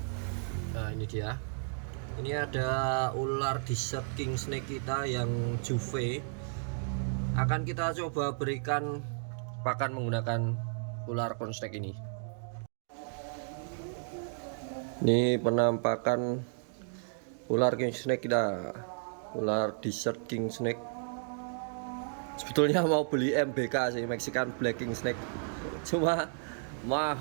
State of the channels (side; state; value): left; silent; 56 dB below the other